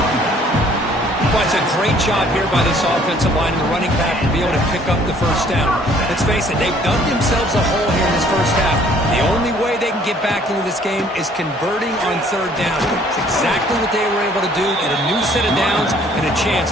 Well, it's a great job here by this offensive line and the running back to be able to pick up the first down. Let's face it, they've dug themselves a hole here in this first half. The only way they can get back into this game is converting on 3rd down. It's exactly what they were able to do. Get a new set of downs and a chance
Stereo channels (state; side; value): normal; both; correlation 0.59